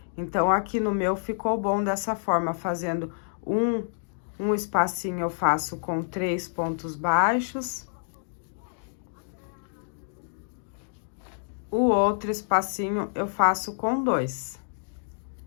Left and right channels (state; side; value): silent; right; digital silence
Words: Então, aqui no meu ficou bom dessa forma, fazendo um espacinho eu faço com 3 pontos baixos. O outro espacinho eu faço com 2.